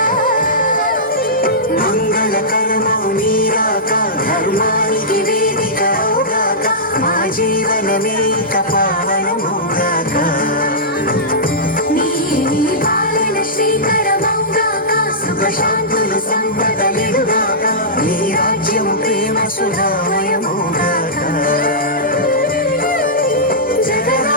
మంగళకరమౌ నీరాక ధర్మానికి వేదిక అవుగాక మా జీవనమే ఇక పావనమౌగాక నీ పాలన శ్రీకరమౌగాక సుఖ శాంతులు సంపదలిడుగాక నీ రాజ్యము ప్రేమ సుధామయమౌగాక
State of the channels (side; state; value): both; normal; correlation -0.15